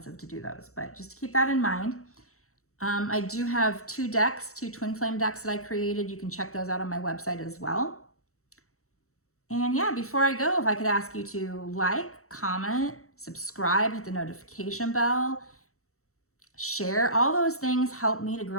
to do those. But just to keep that in mind. I do have 2 decks, 2 Twinflame decks that I created. You can check those out on my website as well. And yeah, before I go, if I could ask you to like, comment, subscribe, hit the notification bell, share, all those things help me to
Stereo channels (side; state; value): right; late; 0.64 ms